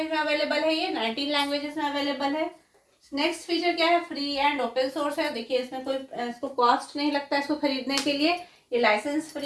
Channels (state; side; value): identical; both; correlation 1.00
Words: में अवेलेबल है, ये 19 लैंग्वेजेस में अवेलेबल है। नेक्स्ट फीचर क्या है, फ्री एंड ओपन सोर्स है। देखिए इसमें कोई इसको कॉस्ट नहीं लगता है इसको खरीदने के लिए, ये लाइसेंस